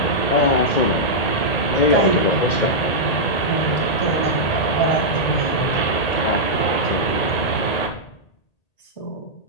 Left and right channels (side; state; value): right; late; 1.8 ms